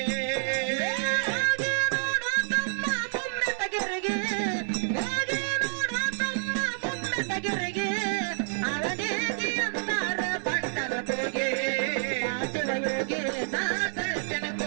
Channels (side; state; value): left; silent; 58 dB below the other